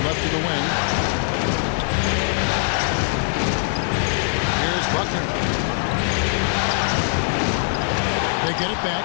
left to the wing. Here's Buckner. They get it back.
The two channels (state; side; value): silent; right; digital silence